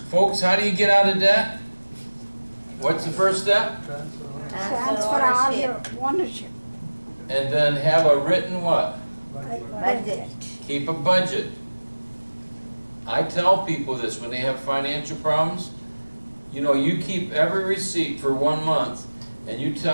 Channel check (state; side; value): inverted; both; correlation -1.00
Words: folks, how do you get out of debt? What's the first step? Transfer all your ownership. And then have a written what? Budget. Keep a budget. I tell people this when they have financial problems. You know, you keep every receipt for 1 month and you